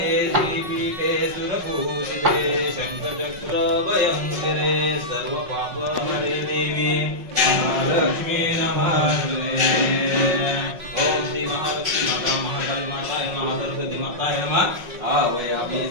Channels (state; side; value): late; left; 5.5 ms